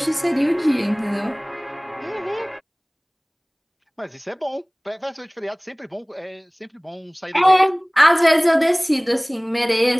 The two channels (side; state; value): both; identical; correlation 1.00